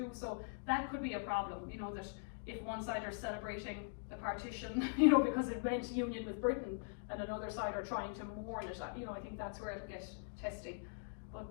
So that could be a problem, you know, that if one side are celebrating the partition, you know, because it meant union with Britain, and another side are trying to mourn it, you know, I think that's where it'll get testy. But,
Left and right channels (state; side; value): silent; right; digital silence